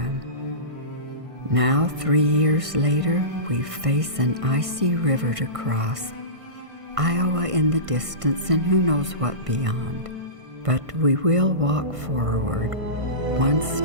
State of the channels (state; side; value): late; left; 1.5 ms